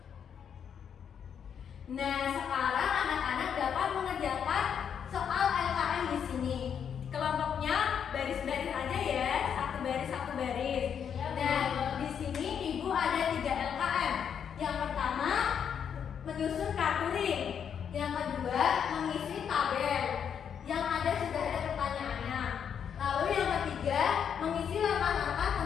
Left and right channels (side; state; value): right; quieter; 7.9 dB